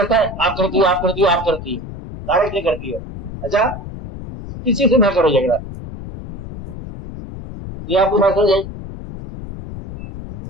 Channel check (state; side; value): noise; left; rumble, 11 dB below the sound